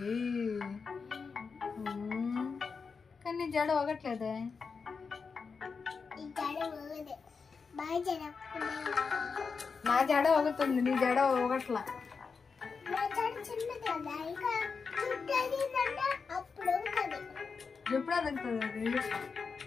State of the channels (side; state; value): right; quieter; 5.2 dB